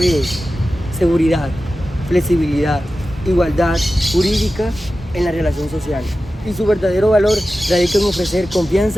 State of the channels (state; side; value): normal; both; correlation 0.94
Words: seguridad, flexibilidad, igualdad jurídica en la relación social. Y su verdadero valor radica en ofrecer